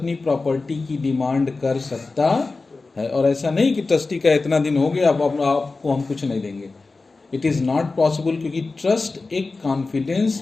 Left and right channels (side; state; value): right; quieter; 3.7 dB